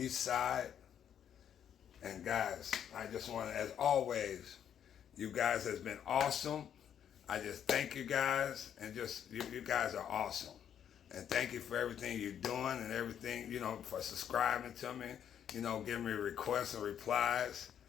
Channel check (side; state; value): right; quieter; 9.2 dB